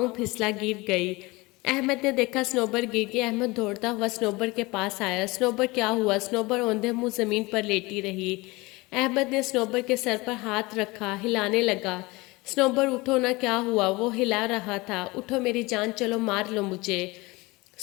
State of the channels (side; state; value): right; quieter; 23.0 dB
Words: پھسلا گر گئی۔ احمد نے دیکھا سنوبر گر گئی۔ احمد دوڑتا ہوا سنوبر کے پاس آیا۔ سنوبر کیا ہوا؟ سنوبر اوندھے منہ زمین پر لیٹی رہی۔ احمد نے سنوبر کے سر پر ہاتھ رکھا، ہلانے لگا۔ سنوبر اٹھو نا، کیا ہوا؟ وہ ہلا رہا تھا۔ اٹھو میری جان، چلو مار لو مجھے۔